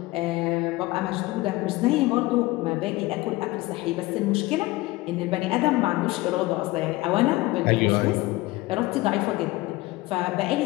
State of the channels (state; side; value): quieter; right; 19.9 dB